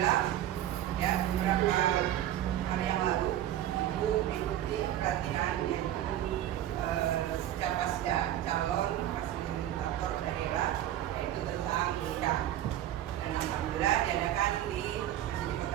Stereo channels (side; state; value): left; quieter; 12.3 dB